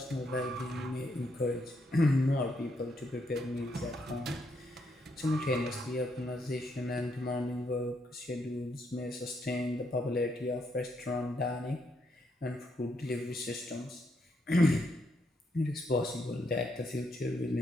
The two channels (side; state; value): both; normal; correlation 0.76